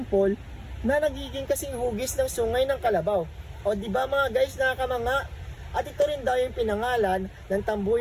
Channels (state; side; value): identical; both; correlation 1.00